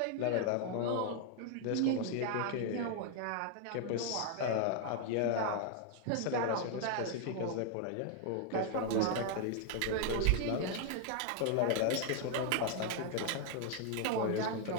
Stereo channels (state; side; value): different; both; correlation 0.00